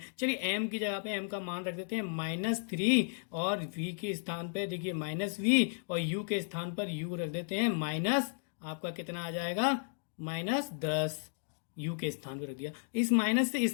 चलिए m की जगह पे m का मान रख देते हैं -3, और v के स्थान पे देखिए -v, और u के स्थान पर u रख देते हैं माइनस, आपका कितना आ जाएगा? -10। u के स्थान पर रख दिया। इस माइनस से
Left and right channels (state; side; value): silent; right; digital silence